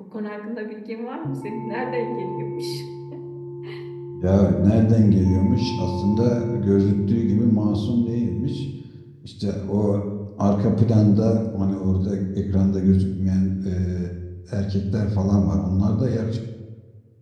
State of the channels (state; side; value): identical; both; correlation 1.00